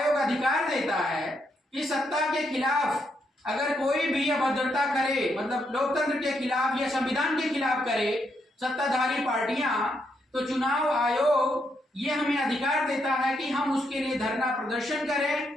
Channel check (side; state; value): both; normal; correlation 0.78